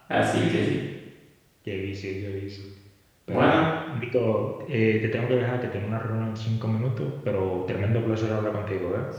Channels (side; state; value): both; identical; correlation 1.00